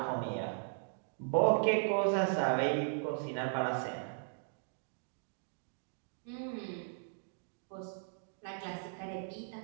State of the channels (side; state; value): left; silent; digital silence